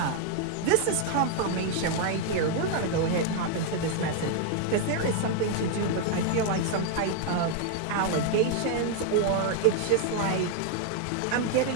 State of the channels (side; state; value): both; different; correlation 0.00